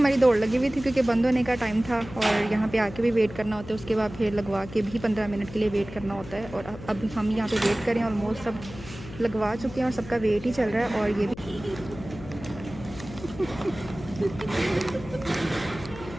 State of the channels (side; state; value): left; noise; hum, 14 dB below the sound